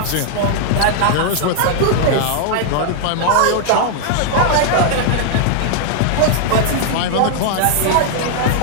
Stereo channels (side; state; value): both; different; correlation 0.00